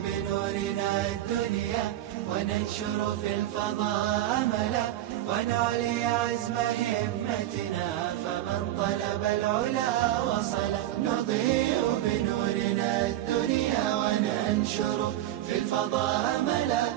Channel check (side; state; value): left; quieter; 13.7 dB